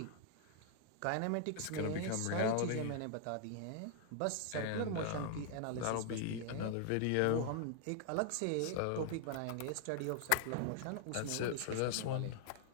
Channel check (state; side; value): different; both; correlation 0.00